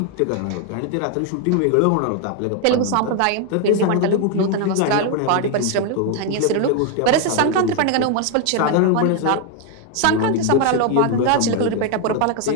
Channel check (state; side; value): different; both; correlation 0.01